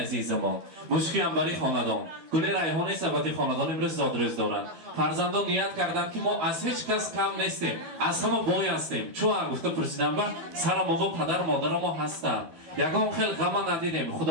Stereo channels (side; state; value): left; late; 13 ms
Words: azizamon. Mushki ambari xonadon. Gul rayhoni sabati xonadon imroz zodroz doran. Farzandon niyat kardand ki ma az hech kas kam nestim. Az hamma boy hastیم. Chua gufta pursidan ba sara mobo padar modaram mo hastan. Yagon khel g'ama nadidem.